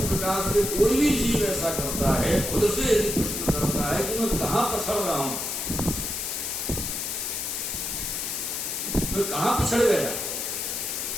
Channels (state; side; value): noise; left; hiss, 3 dB below the sound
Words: प्रकार से कोई भी जीव ऐसा करता है, खुद से यदि प्रश्न करता है कि मैं कहाँ पछड़ रहा हूं, बिछड़ गया।